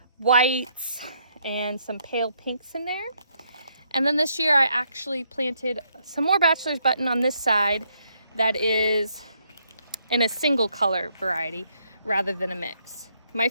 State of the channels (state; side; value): inverted; both; correlation -0.73